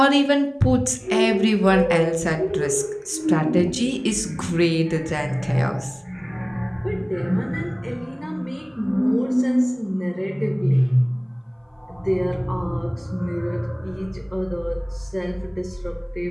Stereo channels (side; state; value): both; identical; correlation 1.00